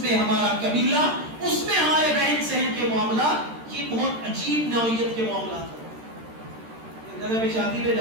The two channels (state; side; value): late; left; 13 ms